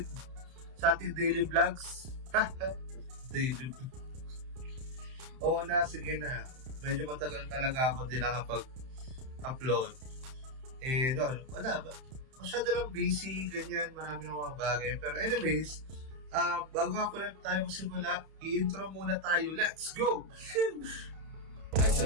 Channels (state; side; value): late; left; 31 ms